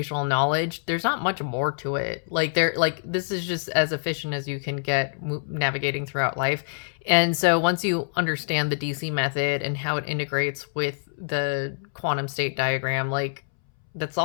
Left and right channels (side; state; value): right; silent; 61 dB below the other